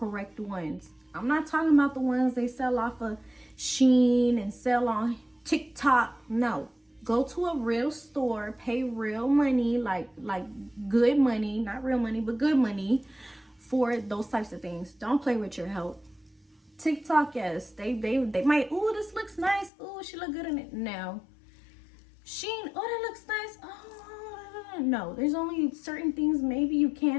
ones. I'm not talking about the ones they sell off of Shein and sell on TikTok. No, go to a real store, pay real money, like good money, not real money, but good money for those types of things. Don't play with your health. TikTok, yes, they might, oh, this looks nice, oh, she look good in it. No. Shein, oh, that looks nice. Oh, no, there's only certain things maybe you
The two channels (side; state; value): right; drops out; at 19.7 s